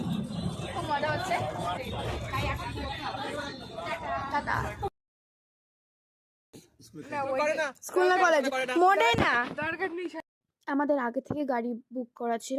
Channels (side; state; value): both; identical; correlation 1.00